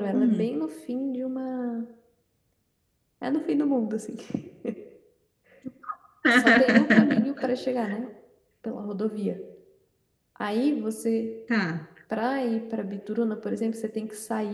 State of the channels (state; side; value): identical; both; correlation 1.00